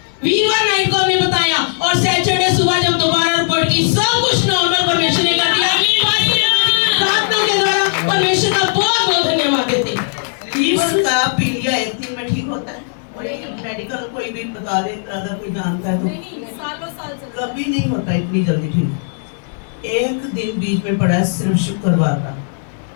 वीरवार नाइट को हमने बताया, और सैटरडे सुबह जब दोबारा रिपोर्ट की सब कुछ नॉर्मल परमेश्वर ने कर दिया। प्रार्थना के द्वारा परमेश्वर का बहुत बहुत धन्यवाद देते। लीवर का पीलिया एक दिन में ठीक होता है, और एक मेडिकल कोई भी बता दे अगर कोई जानता है तो कभी नहीं होता इतनी जल्दी ठीक। एक दिन बीच में पड़ा है सिर्फ शुक्रवार का,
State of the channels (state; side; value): silent; right; 60 dB below the other